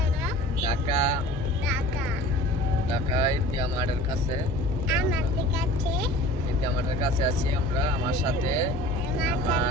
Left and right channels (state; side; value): normal; both; correlation 0.43